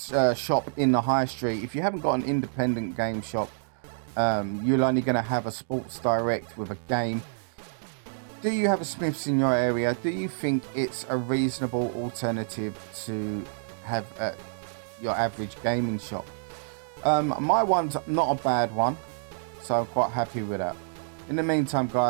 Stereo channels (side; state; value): left; silent; digital silence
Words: shop in the high street, if you haven't got an independent game shop, you're only going to have a Sports Direct with a game. Do you have a Smyths in your area? Do you think it's a reasonable alternative to have your average gaming shop? My one's not a bad one, so I'm quite happy with that. In the meantime,